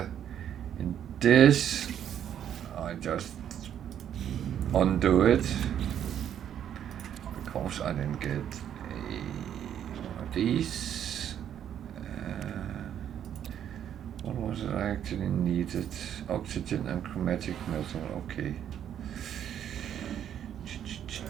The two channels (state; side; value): quieter; left; 9.7 dB